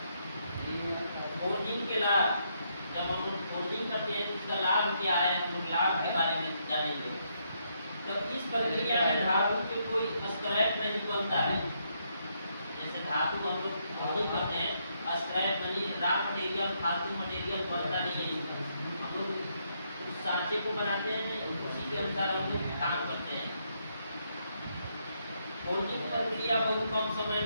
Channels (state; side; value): inverted; both; correlation -0.76